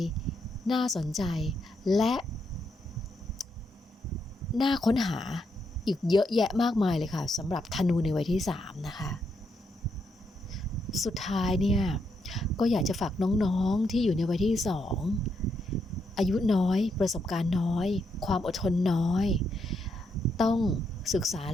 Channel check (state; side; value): normal; both; correlation 0.79